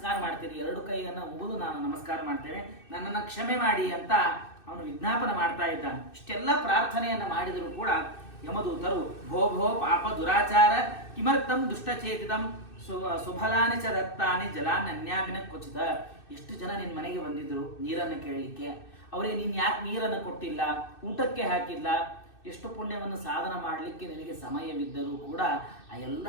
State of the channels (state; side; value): late; right; 2.6 ms